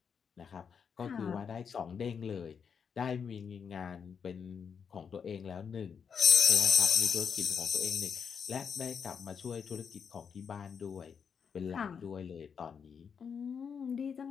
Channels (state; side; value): quieter; right; 6.7 dB